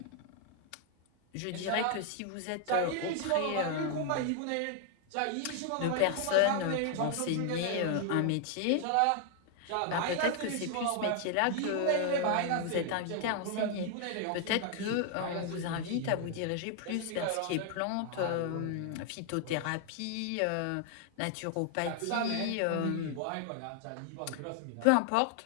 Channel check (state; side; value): different; both; correlation 0.00